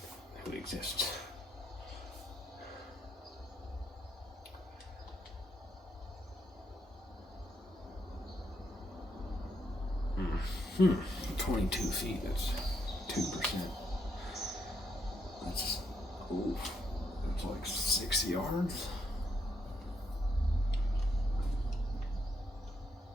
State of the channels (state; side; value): normal; both; correlation 0.77